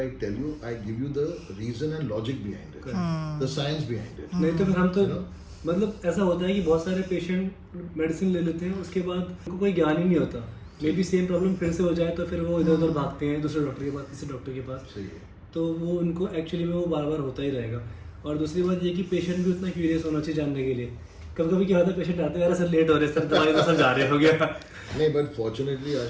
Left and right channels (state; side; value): identical; both; correlation 1.00